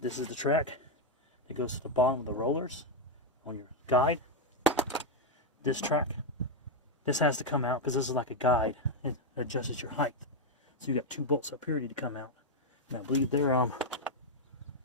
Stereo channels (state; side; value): normal; both; correlation 0.01